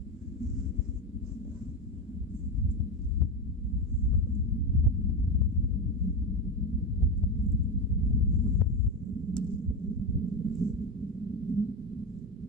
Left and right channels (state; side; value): normal; both; correlation 0.15